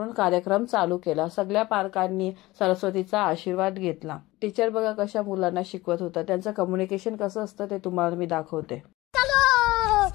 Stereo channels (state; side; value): quieter; right; 19.3 dB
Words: कार्यक्रम चालू केला. सगळ्या पालकांनी सरस्वतीचा आशीर्वाद घेतला. टीचर बघा कशा मुलांना शिकवत होता. त्यांचं कम्युनिकेशन कसं असतं ते तुम्हाला मी दाखवते.